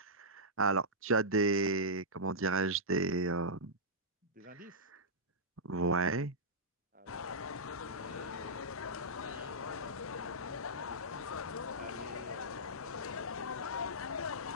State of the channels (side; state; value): both; normal; correlation -0.13